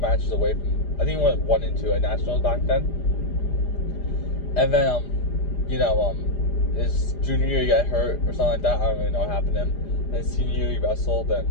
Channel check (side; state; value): right; late; 4.9 ms